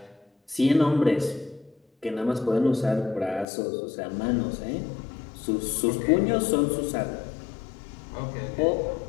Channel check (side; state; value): right; drops out; at 3.5 s